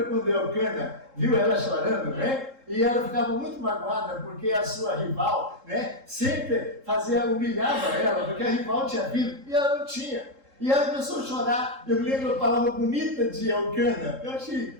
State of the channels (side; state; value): left; late; 3.7 ms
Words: quando Elcana viu ela chorando, né? E ela ficava muito magoada porque a sua rival, né, sempre humilhava ela, porque a rival tinha filho e ela não tinha. E ela começou a chorar. Eu me lembro a palavra bonita de Elcana. Eu